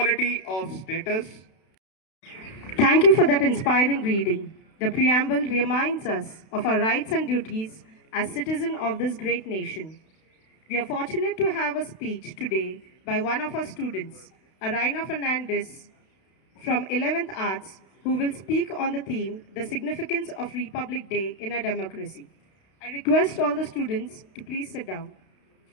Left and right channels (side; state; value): right; late; 32 ms